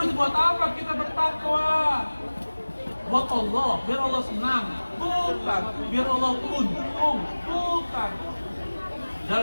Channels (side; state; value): both; inverted; correlation -1.00